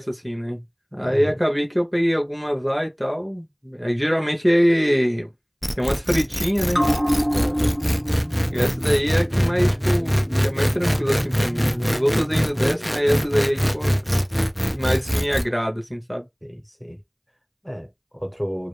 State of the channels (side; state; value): both; identical; correlation 1.00